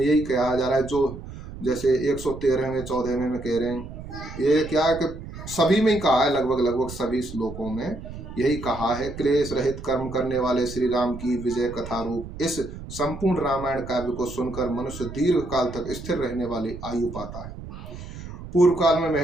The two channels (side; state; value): right; noise; rumble, 12 dB below the sound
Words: यही कहा जा रहा है, जो जैसे 113वें 14वें में कह रहे हैं, ये क्या है कि सभी में ही कहा है, लगभग सभी श्लोकों में यही कहा है, क्लेश रहित कर्म करने वाले श्री राम की विजय कथा रूप इस संपूर्ण रामायण काव्य को सुनकर मनुष्य दीर्घ काल तक स्थिर रहने वाली आयु पाता है। पूर्व काल में